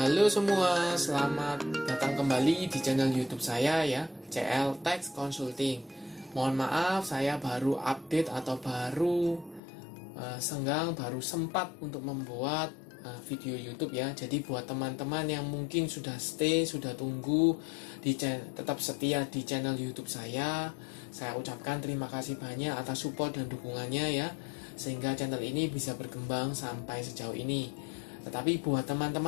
semua, selamat datang kembali di channel YouTube saya ya, CL Tax Consulting. Mohon maaf, saya baru update atau baru baru sempat untuk membuat video YouTube ya. Jadi buat teman-teman yang mungkin sudah stay, sudah tunggu tetap setia di channel YouTube saya ucapkan terima kasih banyak atas support dan dukungannya ya, sehingga channel ini bisa berkembang sampai sejauh ini. Tetapi buat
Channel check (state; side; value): drops out; right; at 9.6 s